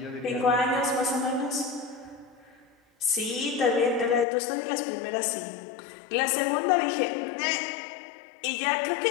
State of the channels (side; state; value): right; drops out; at 4.2 s